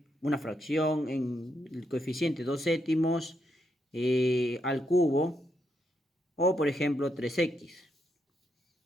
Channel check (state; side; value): normal; both; correlation 0.79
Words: una fracción en el coeficiente 2 séptimos al cubo. O, por ejemplo, 3x.